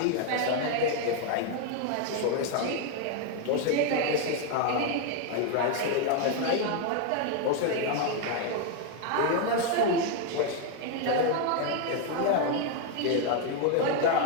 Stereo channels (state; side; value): different; both; correlation 0.01